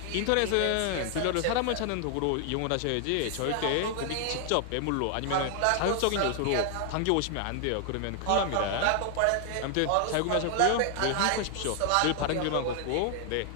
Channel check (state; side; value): different; both; correlation 0.00